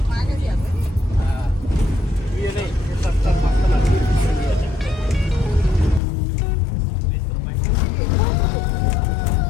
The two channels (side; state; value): right; drops out; at 6.0 s